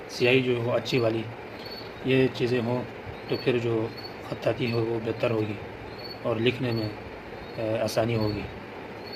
سیاہی جو ہو اچھی والی، یہ چیزیں ہوں تو پھر جو خطاطی ہو وہ بہتر ہوگی اور لکھنے میں آسانی ہوگی۔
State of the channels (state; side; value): identical; both; correlation 1.00